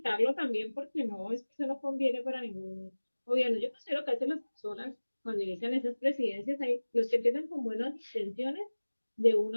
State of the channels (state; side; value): inverted; both; correlation -1.00